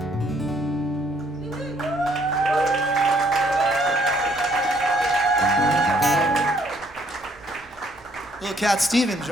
Little Cat Stevens,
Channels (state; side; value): normal; both; correlation 0.65